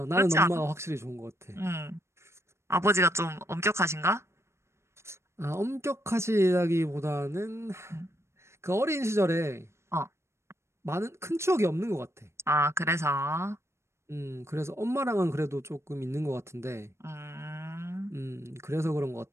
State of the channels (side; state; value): left; late; 0.13 ms